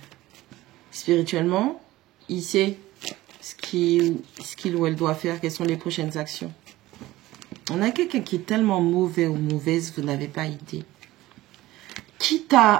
spirituellement, il sait ce qu'il ou elle doit faire, quelles sont les prochaines actions. On a quelqu'un qui est tellement mauvais ou mauvaise, vous n'avez pas idée. Quitte à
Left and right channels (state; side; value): quieter; left; 17.0 dB